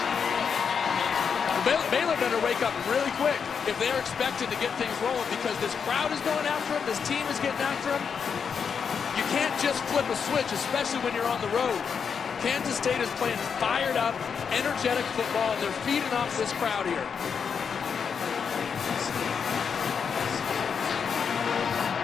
Baylor better wake up really quick if they're expected to get things rolling, because this crowd is going after them, this team is getting after them. You can't just flip a switch, especially when you're on the road. Kansas State is playing fired up, energetic football, and they're feeding off this crowd here.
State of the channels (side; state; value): right; quieter; 6.5 dB